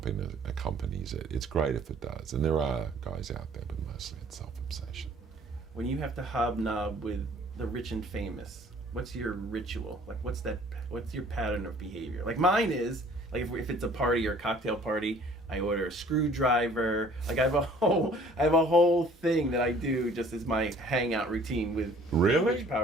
it. It's great if it does. And there are guys out there, but mostly it's self-obsession. When you have to hobnob with the rich and famous, what's your ritual? Like, what's your pattern of behavior? Like, mine is, like, if it's a party or a cocktail party, I order a screwdriver. Like, I have a whole thing that I do just as my hangout routine with Really? rich,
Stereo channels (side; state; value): both; normal; correlation 0.54